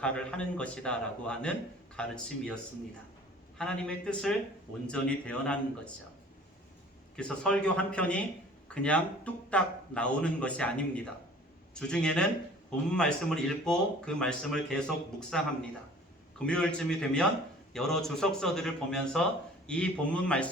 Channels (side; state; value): both; normal; correlation 0.48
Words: 하는 것이다 라고 하는 가르침이었습니다. 하나님의 뜻을 온전히 대언하는 거죠. 그래서 설교 한 편이 그냥 뚝딱 나오는 것이 아닙니다. 주중에는 본문 말씀을 읽고 그 말씀을 계속 묵상합니다. 금요일쯤이 되면 여러 주석서들을 보면서 이 본문